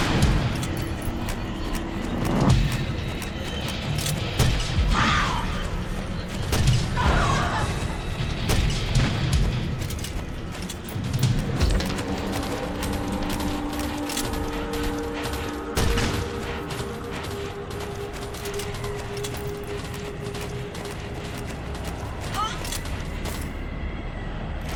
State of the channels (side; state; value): both; identical; correlation 1.00